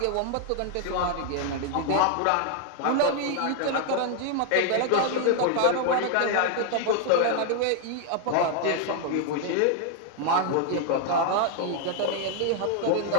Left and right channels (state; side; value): different; both; correlation 0.00